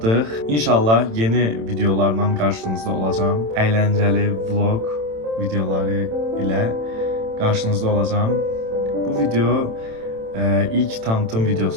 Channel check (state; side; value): late; left; 27 ms